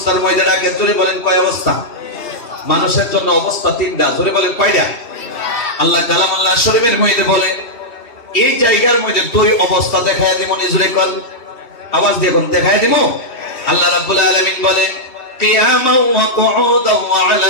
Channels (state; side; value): late; right; 2.7 ms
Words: মধ্যে ডাকে। জোরে বলেন কয় অবস্থা? মানুষের জন্য অবস্থা তিনটা। জোরে বলেন কয়টা? আল্লাহ কালামুল্লাহ শরীফের মধ্যে বলে এই জায়গার মধ্যে দুই অবস্থা দেখায় দিব। জোরে কোন আওয়াজ দিয়ে কোন দেখায় দিব? আল্লাহ রাব্বুল আলামিন বলে কিয়ামান ওয়া কুউদান ওয়া